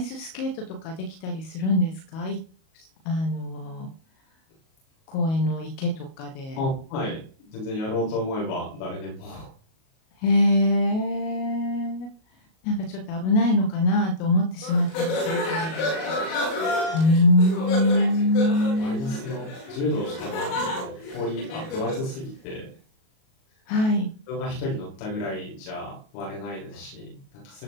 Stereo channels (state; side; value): late; right; 37 ms